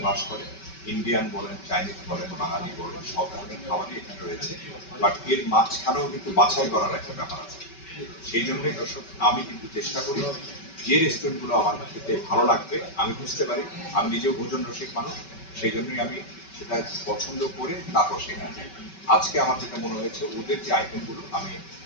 বাস করে। ইন্ডিয়ান বলেন, চাইনিজ বলেন, বাঙালি বলেন, সব ধরনের খাবারই এখানে রয়েছে। বাট এর মাঝখানেও কিন্তু বাছাই করার একটা ব্যাপার আছে। সেই জন্যই দর্শক, আমি কিন্তু চেষ্টা করি যে রেস্টুরেন্টগুলো আমার খেতে ভালো লাগবে, আমি বুঝতে পারি, আমি নিজেও ভোজন রসিক মানুষ, সেই জন্যই আমি সেটা পছন্দ করে তারপর সেখানে যাই। আজকে আমার যেটা মনে হয়েছে, ওদের যে আইটেমগুলো আমি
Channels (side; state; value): right; late; 5.2 ms